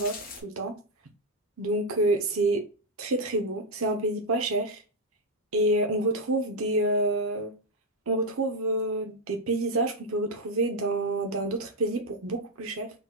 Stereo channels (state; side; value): normal; both; correlation 0.02